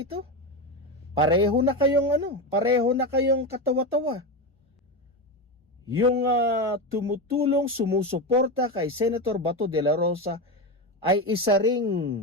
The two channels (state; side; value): normal; both; correlation 0.16